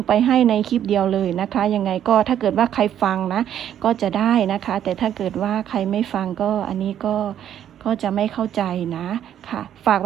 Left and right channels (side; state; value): left; quieter; 10.3 dB